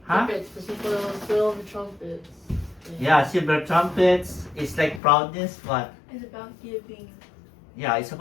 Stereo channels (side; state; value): right; drops out; at 5.0 s